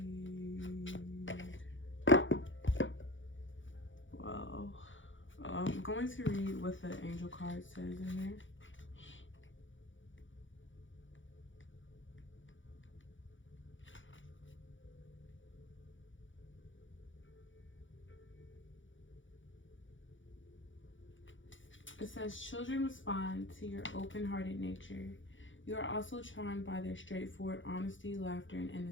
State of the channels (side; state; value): right; late; 0.56 ms